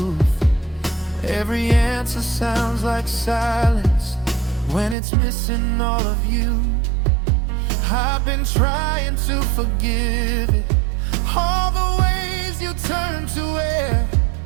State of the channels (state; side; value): drops out; left; at 5.0 s